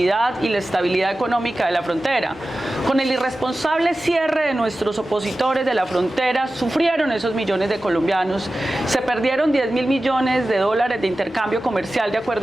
y la estabilidad económica de la frontera. Con el irresponsable cierre de nuestros opositores de la frontera, sufrieron esos millones de colombianos, se perdieron 10.000 millones de dólares de intercambio comercial de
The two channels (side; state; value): both; normal; correlation 0.95